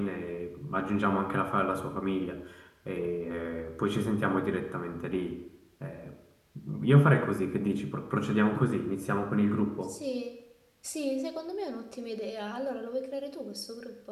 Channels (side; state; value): both; identical; correlation 1.00